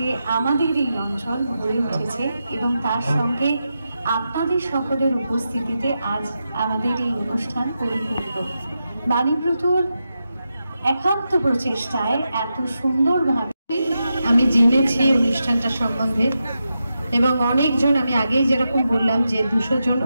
আমাদের এই অঞ্চল গড়ে উঠেছে এবং তার সঙ্গে আপনাদের সকলের উপস্থিতিতে আজ আমাদের এই অনুষ্ঠান পরিপূর্ণ। বাণীব্রতর একান্ত প্রচেষ্টায় এত সুন্দরভাবে আমি জেনেছি অনুষ্ঠানটা সম্বন্ধে এবং অনেকজন, আমি আগেই যেরকম বললাম যে 200 জন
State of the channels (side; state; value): both; inverted; correlation -0.88